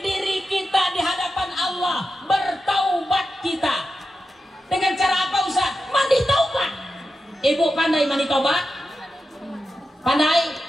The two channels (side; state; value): both; normal; correlation 0.90